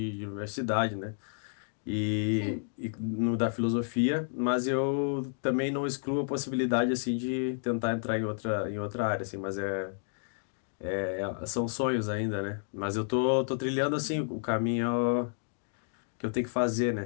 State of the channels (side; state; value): right; silent; digital silence